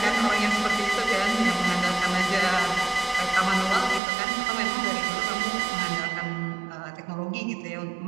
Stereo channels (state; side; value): drops out; left; at 4.0 s